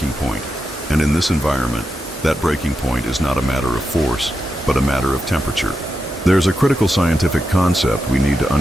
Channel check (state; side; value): normal; both; correlation 0.87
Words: point, and in this environment, that breaking point is not a matter of force, but a matter of temperature. There's a critical scientific concept we need to